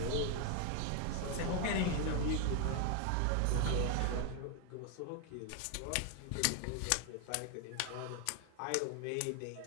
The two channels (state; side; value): different; both; correlation 0.01